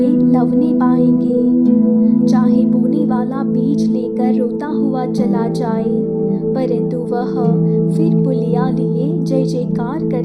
लवने पाएंगे। चाहे बोने वाला बीज लेकर रोता हुआ चला जाए, परंतु वह फिर पुलिया लिए जय जयकार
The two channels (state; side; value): identical; both; correlation 1.00